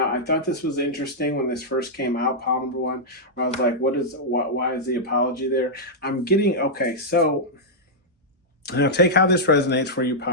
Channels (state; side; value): normal; both; correlation -0.08